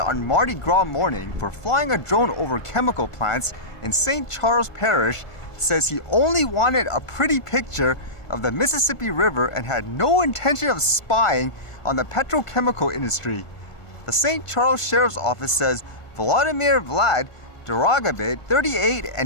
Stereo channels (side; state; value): right; late; 1.5 ms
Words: Mardi Gras morning for flying a drone over chemical plants in St. Charles Parish says he only wanted a pretty picture of the Mississippi River and had no intention of spying on the petrochemical industry. The St. Charles Sheriff's Office says Vladimir Vlad Duragabit, 38,